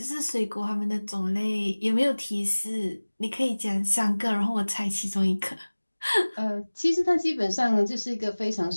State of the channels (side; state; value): both; inverted; correlation -1.00